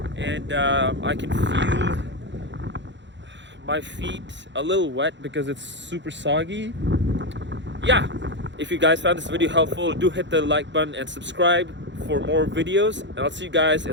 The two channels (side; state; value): left; late; 0.53 ms